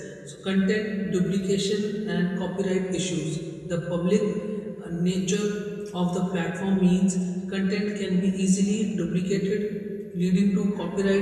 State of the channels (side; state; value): both; identical; correlation 1.00